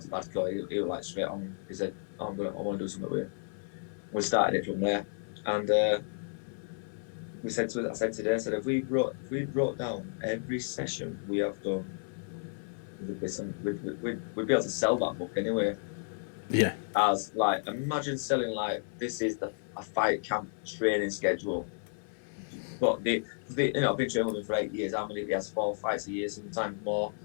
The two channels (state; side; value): silent; right; 55 dB below the other